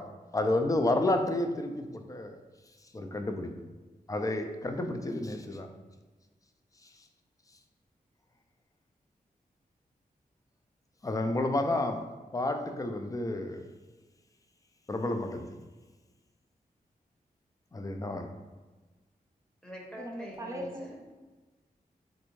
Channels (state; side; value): normal; both; correlation 0.75